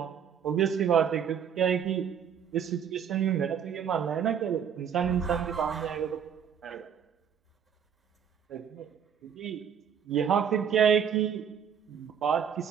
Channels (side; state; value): left; quieter; 8.0 dB